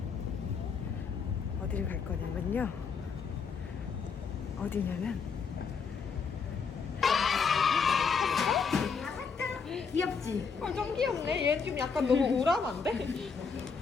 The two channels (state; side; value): quieter; right; 5.6 dB